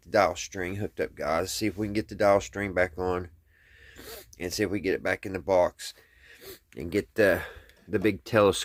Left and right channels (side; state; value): both; identical; correlation 1.00